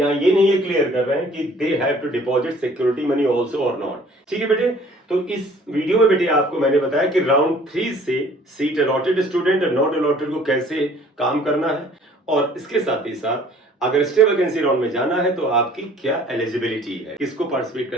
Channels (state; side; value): normal; both; correlation 0.54